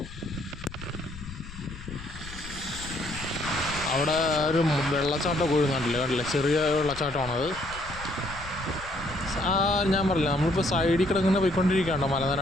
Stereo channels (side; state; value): left; noise; rumble, 14 dB below the sound